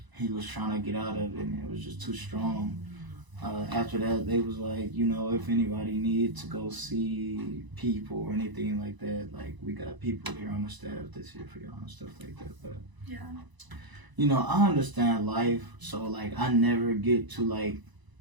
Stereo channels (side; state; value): left; late; 1.0 ms